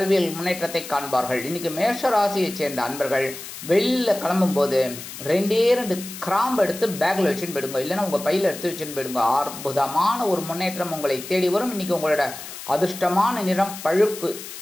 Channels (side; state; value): left; noise; hiss, 12 dB below the sound